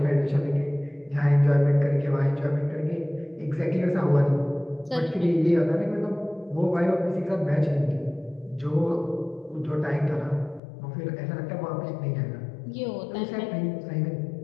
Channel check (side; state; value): right; drops out; at 10.6 s